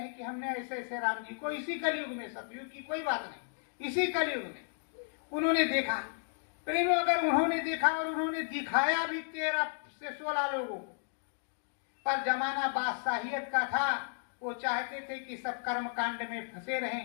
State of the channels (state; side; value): silent; right; digital silence